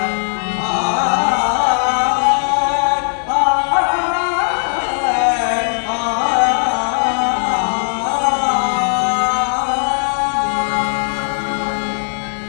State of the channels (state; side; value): silent; right; 68 dB below the other